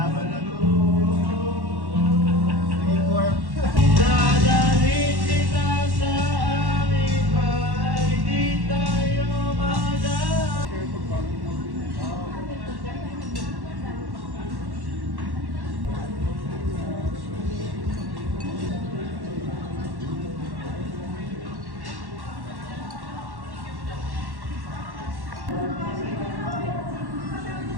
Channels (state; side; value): late; left; 1.1 ms